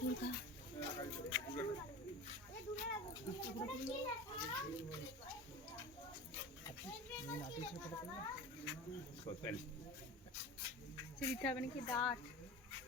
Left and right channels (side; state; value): both; normal; correlation 0.33